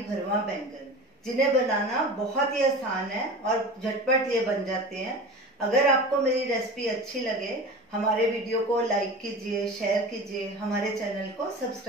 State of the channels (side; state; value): both; normal; correlation 0.34